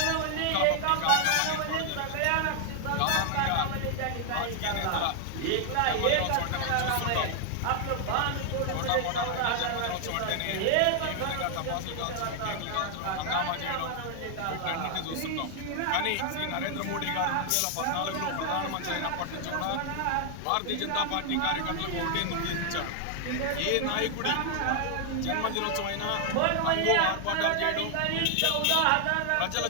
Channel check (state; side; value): different; both; correlation 0.00